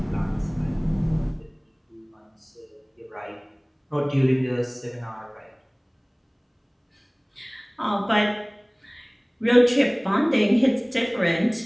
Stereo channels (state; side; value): identical; both; correlation 1.00